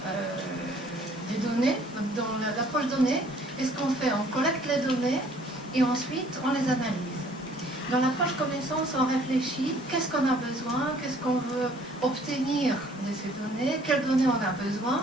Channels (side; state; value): both; normal; correlation 0.58